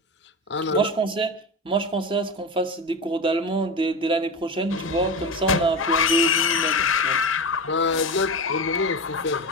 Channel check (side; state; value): both; normal; correlation 0.22